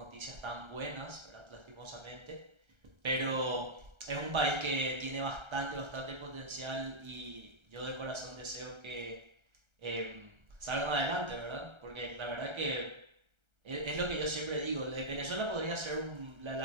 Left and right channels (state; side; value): late; left; 1.3 ms